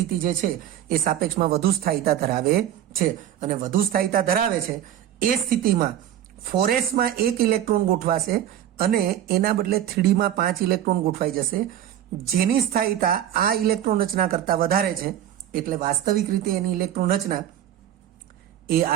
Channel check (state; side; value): quieter; left; 11.2 dB